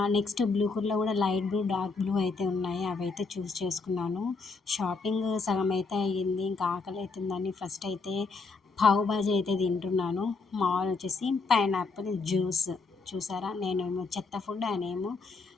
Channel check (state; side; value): quieter; right; 4.2 dB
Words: నెక్స్ట్ బ్లూ కలర్‌లో కూడా లైట్ బ్లూ, డార్క్ బ్లూ అయితే ఉన్నాయి. అవైతే చూస్ చేసుకున్నాను. షాపింగ్ సగం అయితే అయ్యింది. ఇంకా ఆకలి అవుతుందని ఫస్ట్ అయితే పావు బాజీ అయితే తింటున్నాను. మా వారు వచ్చేసి పైనాపిల్ జ్యూస్. చూసారా? నేనేమో చెత్త ఫుడ్, ఆయనేమో